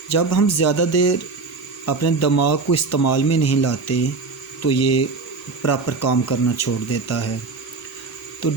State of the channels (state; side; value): quieter; left; 4.2 dB